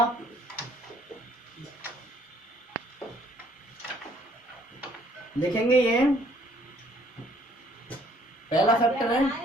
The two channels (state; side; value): normal; both; correlation 0.62